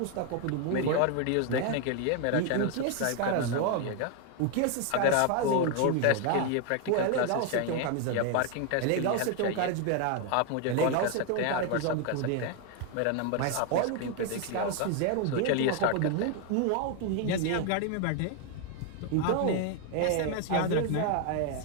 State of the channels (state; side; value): different; both; correlation 0.01